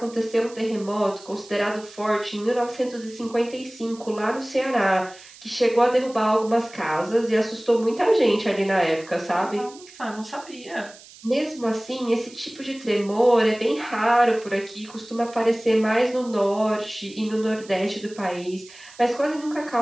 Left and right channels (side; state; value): right; noise; hiss, 21 dB below the sound